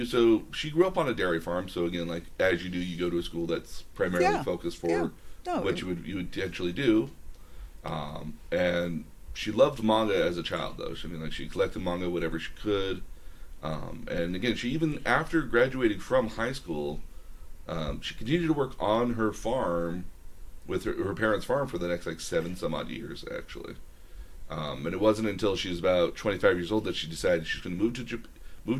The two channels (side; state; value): both; identical; correlation 1.00